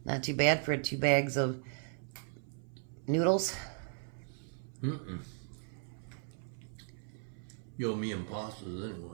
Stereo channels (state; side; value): silent; left; 53 dB below the other